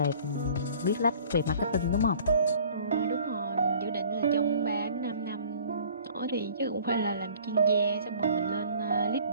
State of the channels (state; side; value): inverted; both; correlation -0.51